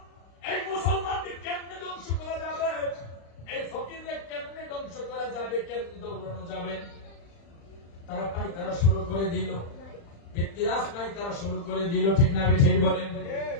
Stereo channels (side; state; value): right; late; 35 ms